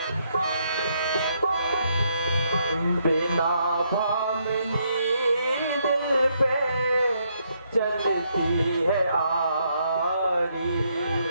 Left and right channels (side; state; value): both; inverted; correlation -0.75